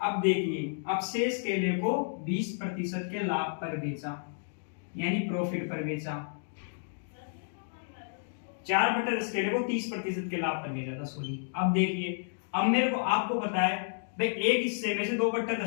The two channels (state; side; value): silent; right; digital silence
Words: देखिए, अब शेष केले को 20% के लाभ पर बेचा यानी प्रॉफिट पर बेचा। 4/10 केले को 30% के लाभ पर बेचा था, सॉरी। अब देखिए, अब मेरे को आपको पता है भाई, एक हिस्से में से